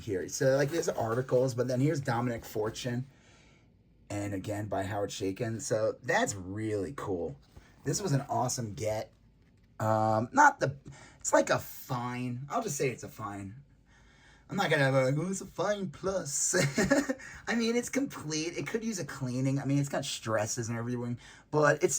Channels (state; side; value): identical; both; correlation 1.00